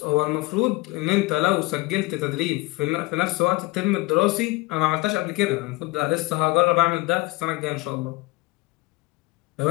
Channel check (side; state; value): right; quieter; 21.5 dB